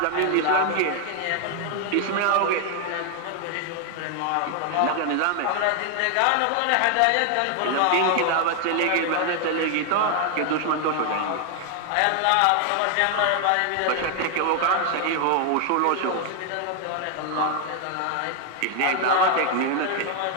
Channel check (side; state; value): both; different; correlation 0.00